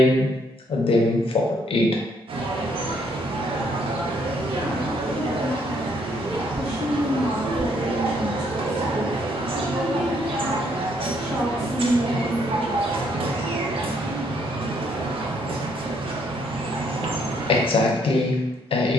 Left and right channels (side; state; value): both; normal; correlation 0.69